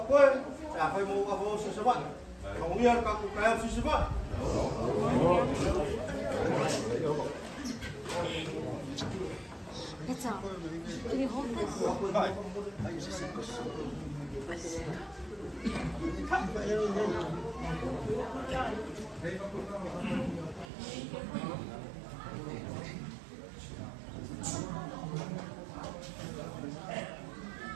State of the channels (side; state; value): left; drops out; at 20.7 s